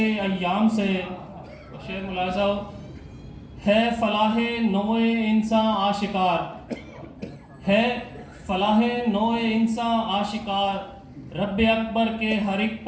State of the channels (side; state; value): both; identical; correlation 1.00